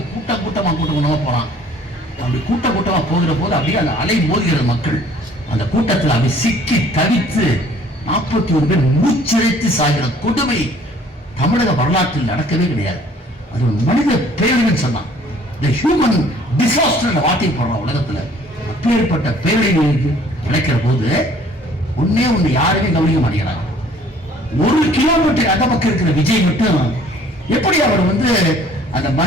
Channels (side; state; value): both; normal; correlation 0.56